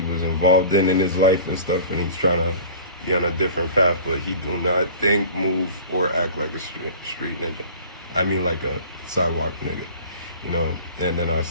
was involved in his life and stuff, and he's trying to be on a different path, but he do not think, move, or act like a street ninja. I mean, like a sidewalk nigga, you know? And then I've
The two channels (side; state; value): both; inverted; correlation -0.42